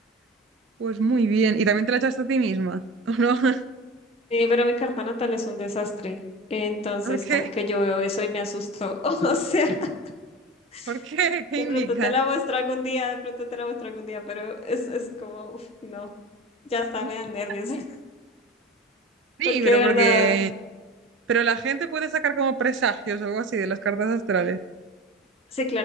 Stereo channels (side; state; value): both; normal; correlation 0.33